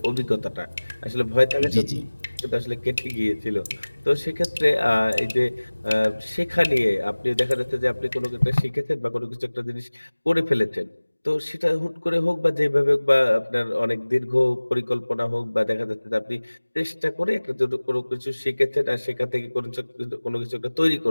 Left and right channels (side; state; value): both; inverted; correlation -1.00